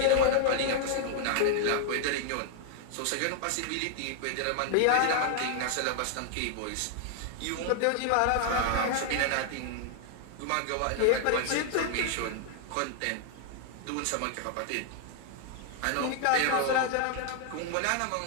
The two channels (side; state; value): both; different; correlation 0.00